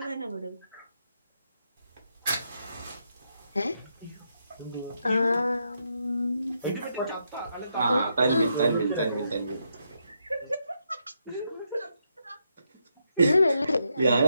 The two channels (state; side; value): inverted; both; correlation -0.80